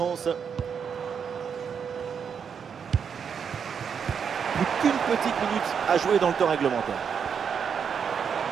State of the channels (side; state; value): left; quieter; 6.9 dB